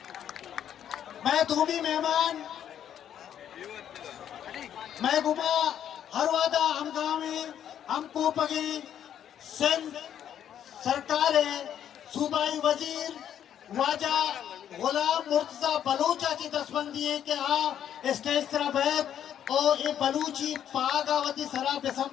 मैं धूमी मेहमान मैं गुमा हर वादा हम गाँव में हमको पगे सिंध सरकार है सूबाई वजीर वाजा गुलाम मुर्तजा बलूचा की दसबंदी है कि हाँ स्टेज तरफ है और ये बलूची पागावती सरा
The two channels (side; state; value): right; quieter; 9.8 dB